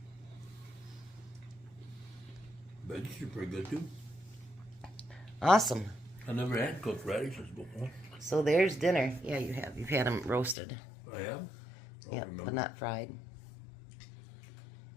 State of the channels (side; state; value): right; drops out; at 10.6 s